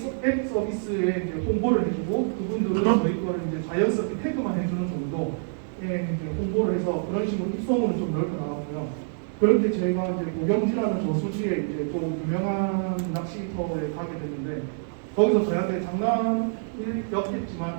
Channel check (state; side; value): silent; left; digital silence